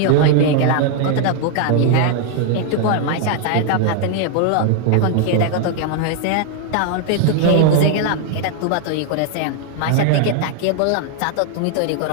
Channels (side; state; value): both; different; correlation 0.00